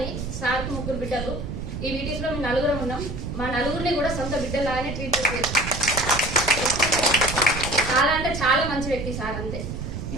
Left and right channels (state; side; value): noise; right; rumble, 6 dB below the sound